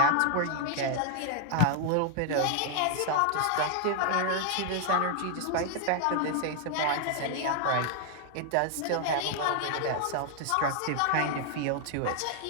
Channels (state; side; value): different; both; correlation 0.00